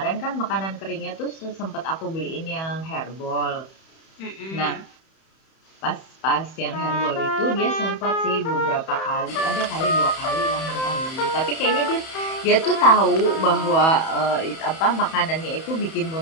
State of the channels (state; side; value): late; right; 31 ms